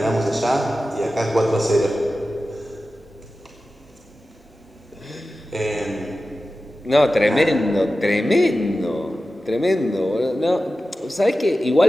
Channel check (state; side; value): normal; both; correlation 0.94